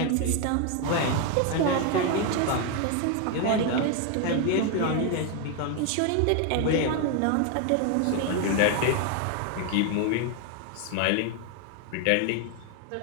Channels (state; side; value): different; both; correlation 0.01